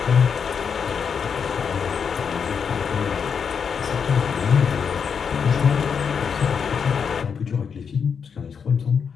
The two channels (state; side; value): quieter; right; 6.6 dB